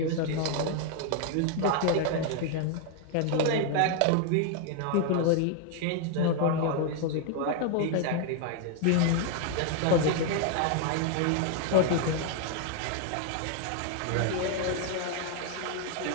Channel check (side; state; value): both; different; correlation 0.00